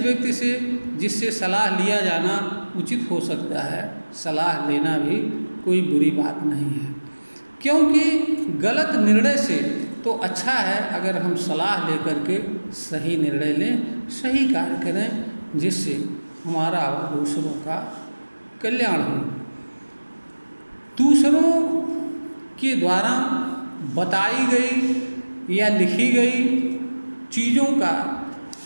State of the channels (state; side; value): inverted; both; correlation -1.00